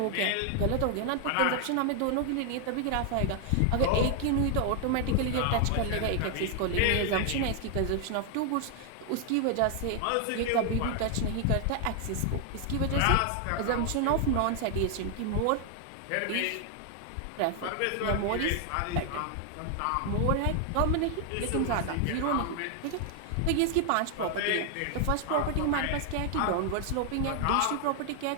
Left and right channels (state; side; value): different; both; correlation 0.00